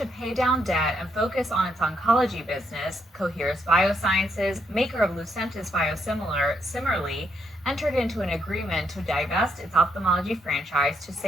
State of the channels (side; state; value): both; normal; correlation 0.76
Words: pay down debt and focus on its oncology business, Coherus Biosciences, maker of Lucentis biosimilar, similarly entered into an agreement to divest its ophthalmology franchise to